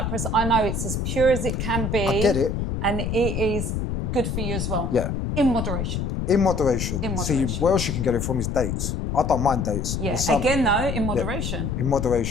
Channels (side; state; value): left; noise; rumble, 2 dB below the sound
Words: I know it's as pure as it can be. I get it. And it is good for you as well. Yeah. In moderation. In moderation. See, where else you can get it from is dates. I don't mind dates. Yeah. Again, though, in moderation. Yeah, in